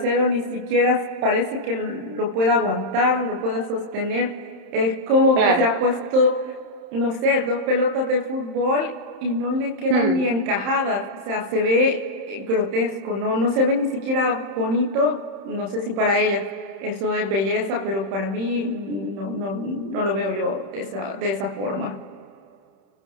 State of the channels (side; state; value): left; late; 31 ms